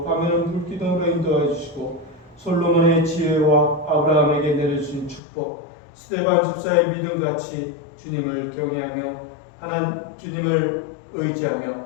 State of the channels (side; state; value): right; drops out; at 5.2 s